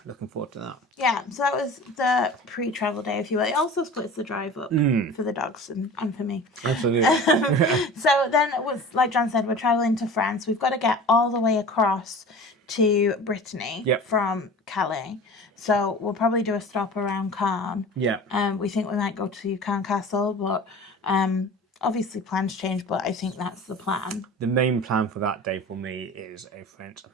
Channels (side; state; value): both; normal; correlation 0.38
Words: looking forward to that. Yeah, so that was the pre-travel day, if you will. It also splits the drive up for the dogs and for me. Absolutely. So then it was, like John said, we're travelling to France. We've got to get all the way across to Brittany from Calais. So we'll probably do a stop around Caen. Yeah. We think we might go to Caen Castle, but obviously plans change, but I think that's the plan. The main plan for that day for me is a French